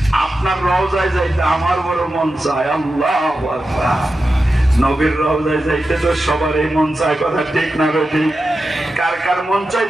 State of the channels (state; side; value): normal; both; correlation 0.91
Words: আপনার রওজায় যাইতে আমার বড় মন চায়। আল্লাহু আকবার। নবীর রওজায় যাইতে তো সবারই মন চায়। কথা ঠিক না ঠিক? কার কার মন চায়